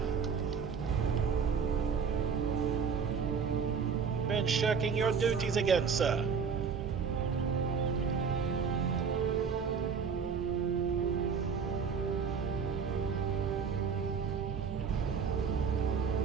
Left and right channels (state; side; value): quieter; left; 6.1 dB